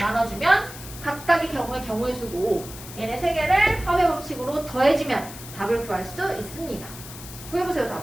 각각의 경우의 수고 얘네 3개를 합의 법칙으로 더해주면 답을 구할 수 있습니다. 구해보세요.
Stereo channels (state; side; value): noise; left; hiss, 14 dB below the sound